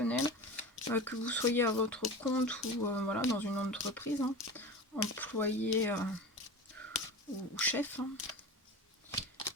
que vous soyez à votre compte ou voilà, dans une entreprise, hein, employé ou chef. Hein.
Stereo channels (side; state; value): both; normal; correlation 0.31